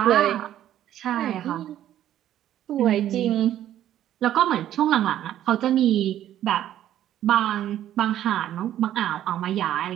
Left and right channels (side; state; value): left; quieter; 11.9 dB